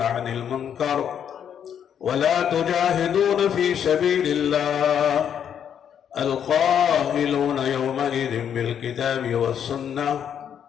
عن المنكر ولا تجاهدون في سبيل الله القائلون يومئذ بالكتاب والسنة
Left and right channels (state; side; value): quieter; right; 8.7 dB